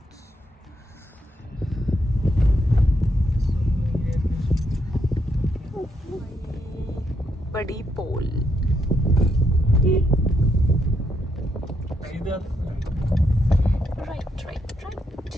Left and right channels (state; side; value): normal; both; correlation 0.78